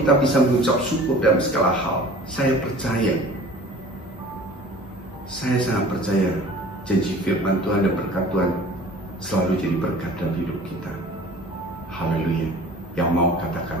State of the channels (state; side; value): normal; both; correlation 0.45